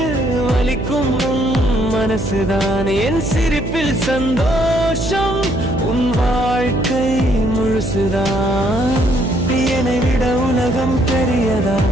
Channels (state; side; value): noise; right; hum, 5 dB below the sound